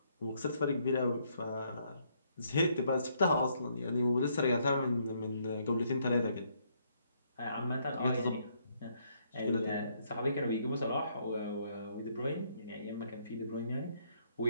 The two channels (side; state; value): both; inverted; correlation -0.71